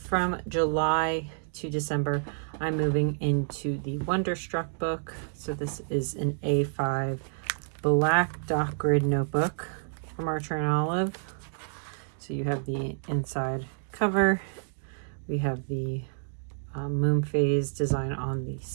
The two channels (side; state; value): left; silent; digital silence